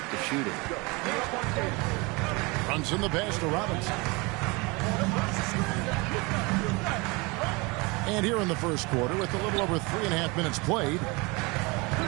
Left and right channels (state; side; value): quieter; left; 26.5 dB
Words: to shoot it. Brunson the pass to Robinson. And here in the first quarter, with a little over 3.5 minutes played,